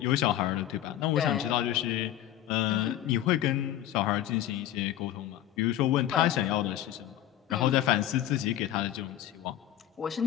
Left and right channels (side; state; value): right; quieter; 12.6 dB